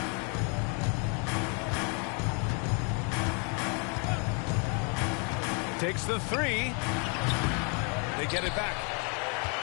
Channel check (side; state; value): right; quieter; 35.9 dB